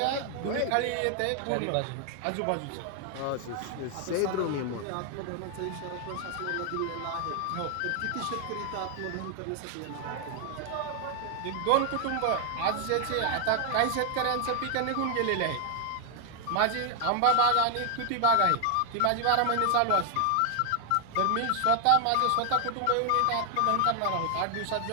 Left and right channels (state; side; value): different; both; correlation 0.00